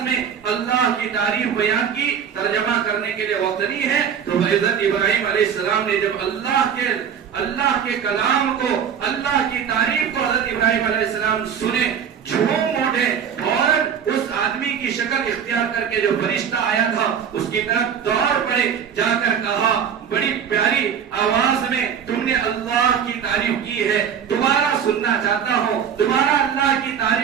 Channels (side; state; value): left; quieter; 7.9 dB